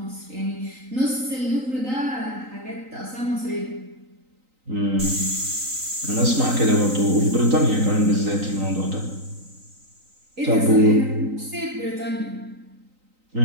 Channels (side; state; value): left; late; 3.9 ms